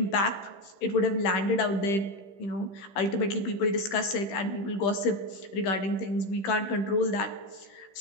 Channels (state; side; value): late; right; 15 ms